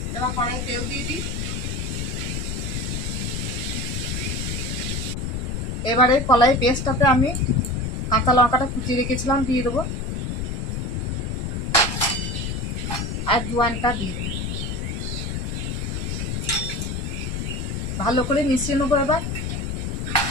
এবার কড়াই তেল দিয়ে দিই। এবারে কলাই পেস্টটাতে আমি কাঁচা লঙ্কাটা কুচিয়ে রেখেছিলাম দিয়ে দেবো, আর জোয়ানটা দিয়ে দেবো। ভালো করে মিশিয়ে নেবো। এবার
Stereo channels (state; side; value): noise; left; rumble, 2 dB below the sound